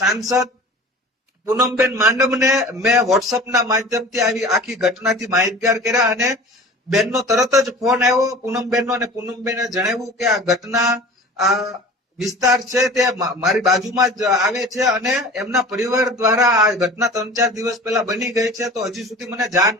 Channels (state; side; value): normal; both; correlation 0.40